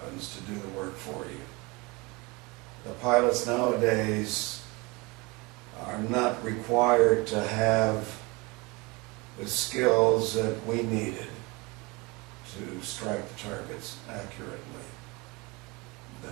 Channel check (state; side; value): quieter; left; 25.8 dB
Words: to do the work for you. The pilots nowadays are not required to have the skills that we needed to strike the targets accurately.